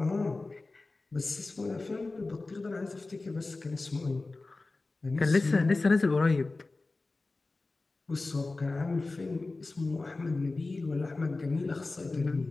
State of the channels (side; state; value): right; quieter; 3.4 dB